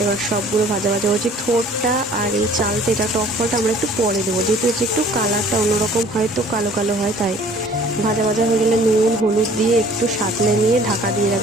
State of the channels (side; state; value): both; normal; correlation 0.52